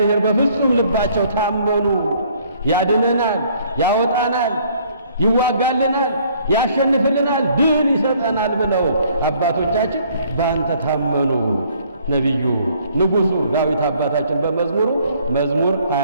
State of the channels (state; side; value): inverted; both; correlation -0.61